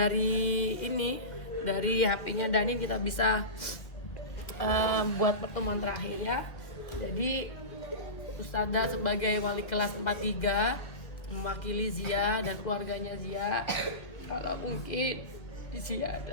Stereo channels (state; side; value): late; right; 2.0 ms